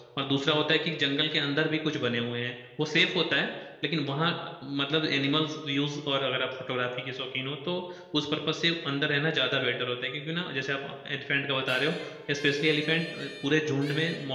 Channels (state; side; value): identical; both; correlation 1.00